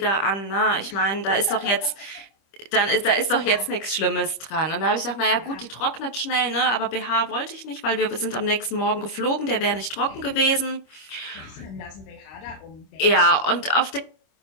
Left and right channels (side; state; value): right; late; 25 ms